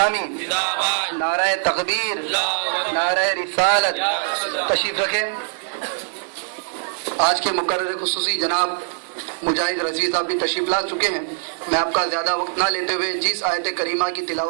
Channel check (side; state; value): left; silent; 64 dB below the other